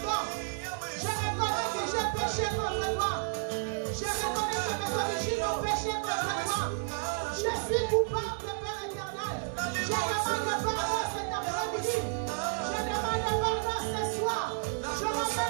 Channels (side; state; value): left; silent; digital silence